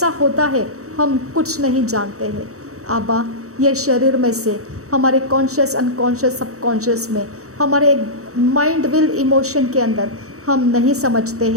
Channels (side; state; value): left; late; 0.65 ms